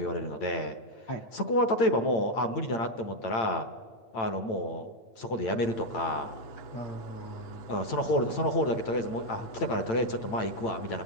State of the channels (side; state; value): right; late; 8.9 ms